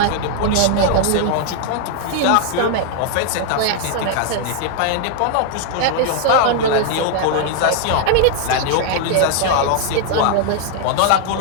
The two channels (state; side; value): different; both; correlation 0.00